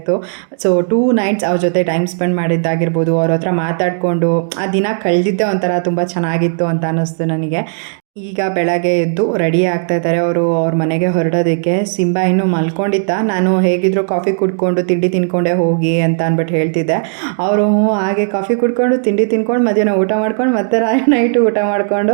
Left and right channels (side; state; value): left; silent; digital silence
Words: ಸೊ 2 nights ಅವ್ರ ಜೊತೆ ಟೈಮ್ ಸ್ಪೆಂಡ್ ಮಾಡಿದ್ದಾಗಿರ್ಬೋದು, ಅವ್ರ ಹತ್ರ ಮಾತಾಡಿಕೊಂಡು ಆ ದಿನ ಕಳೆದಿದ್ದೆ ಒಂಥರ ತುಂಬ ಚೆನ್ನಾಗಿತ್ತು ಅಂತ ಅನ್ನಿಸ್ತು ನನಗೆ. ಈಗ ಬೆಳಗ್ಗೆ ಎದ್ದು ರೆಡಿ ಆಗ್ತಾ ಇದ್ದಾರೆ ಅವರು ಅವ್ರ ಮನೆಗೆ ಹೊರಡೋದಕ್ಕೆ. ಸಿಂಬಾ ಇನ್ನೂ ಮಲ್ಕೊಂಡಿದ್ದ. ನಾನು ಹೇಗಿದ್ರು ಕಾಫಿ ಕುಡ್ಕೊಂಡು ತಿಂಡಿ ತಿನ್ಕೊಂಡೆ ಹೋಗಿ ಅಂತ ಅಂದ್ಬಿಟ್ಟು ಹೇಳ್ತಿದ್ದೆ. ಅವರು ಹಾಗೆ ಕಾಫಿ ಕುಡ್ಕೊಂಡು ತಿಂಡಿ ತಿನ್ಕೊಂಡು ಮಧ್ಯಾಹ್ನ ಊಟ ಮಾಡ್ಕೊಂಡು ಮತ್ತೆ ನೈಟು ಊಟ ಮಾಡಿಕೊಂಡು